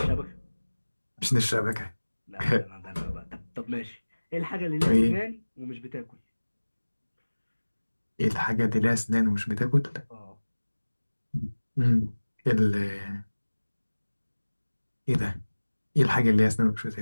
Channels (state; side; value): inverted; both; correlation -1.00